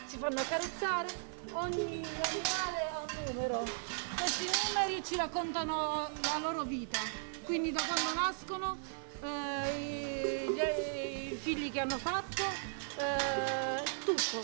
si fanno accarezzare, ogni animale ha un numero. questi numeri ci raccontano la loro vita, quindi da quando nascono, i figli che hanno fatto, tutto.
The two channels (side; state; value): left; silent; 53 dB below the other